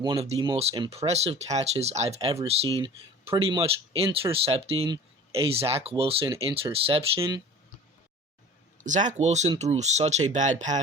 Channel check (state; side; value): normal; both; correlation 0.42